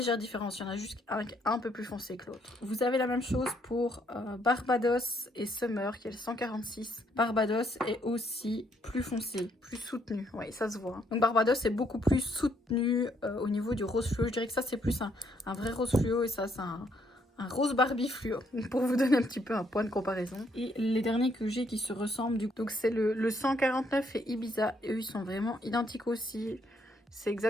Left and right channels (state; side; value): normal; both; correlation 0.71